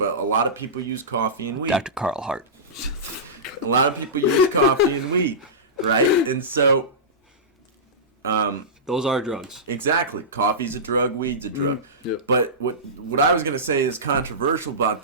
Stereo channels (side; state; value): both; normal; correlation -0.18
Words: a lot of people use coffee and weed. Dr. Carl Hart. A lot of people use coffee and weed, right? And so, Those are drugs. exactly, coffee's a drug, weed's a drug. Yep. But what I was going to say is controversial about